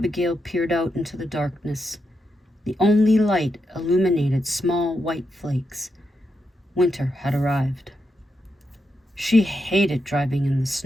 peered out into the darkness. The only light illuminated small white flakes. Winter had arrived. She hated driving in the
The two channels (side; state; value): both; normal; correlation 0.84